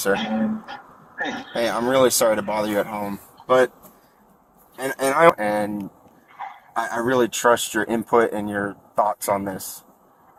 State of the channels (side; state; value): both; identical; correlation 1.00